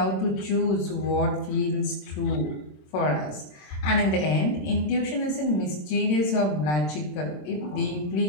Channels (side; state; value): right; late; 27 ms